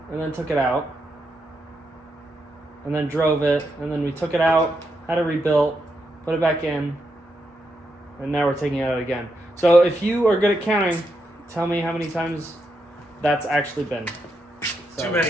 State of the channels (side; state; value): both; normal; correlation 0.82